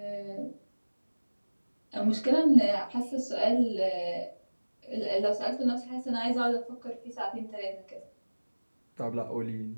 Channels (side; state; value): both; inverted; correlation -1.00